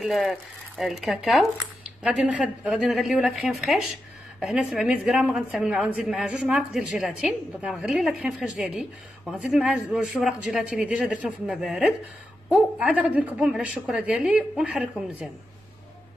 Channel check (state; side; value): normal; both; correlation 0.88